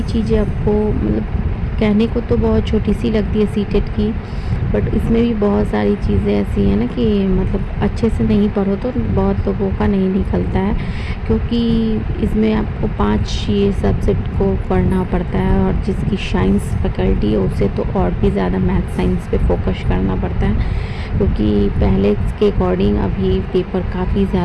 चीज़ें आपको मतलब कहने को तो बहुत छोटी सी लगती है सीटेट की, बट इसमें भी बहुत सारी चीज़ें ऐसी हैं ना कि मतलब अच्छे से नहीं पढ़ो तो बहुत लोगों का नहीं निकलता है, क्योंकि इसमें आपको 5 ये सब्जेक्ट को पढ़ना पड़ता है। और जिसकी साइंस फैकल्टी है उसे तो और भी ज़्यादा मैथ साइंस पे फोकस करना पड़ता है, क्योंकि पहले के अकॉर्डिंग अभी पेपर काफ़ी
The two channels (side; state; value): both; identical; correlation 1.00